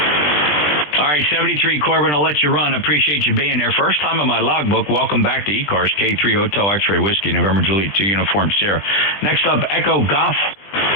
All right, 73 Corbin, I'll let you run. I appreciate you being there. First time on my logbook. Welcome back to ECARS, K3 Hotel X-Ray Whiskey, November Juliet 2 Uniform Sierra. Next up, Echo Golf.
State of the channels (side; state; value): right; late; 20 ms